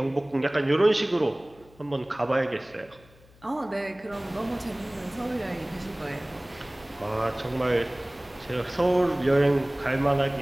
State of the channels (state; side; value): noise; left; hum, 27 dB below the sound